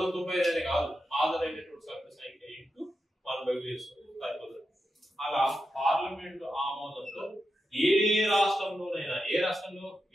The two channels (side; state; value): both; normal; correlation 0.88